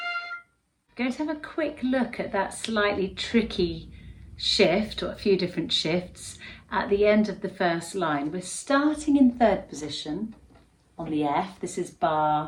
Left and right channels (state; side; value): identical; both; correlation 1.00